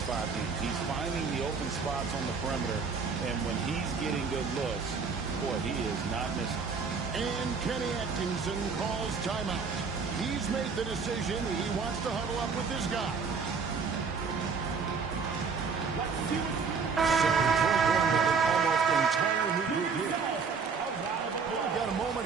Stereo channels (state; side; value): quieter; left; 5.3 dB